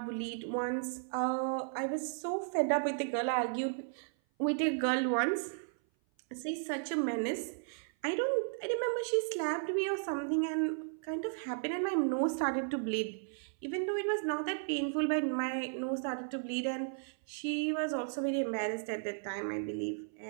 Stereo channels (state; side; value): silent; left; 55 dB below the other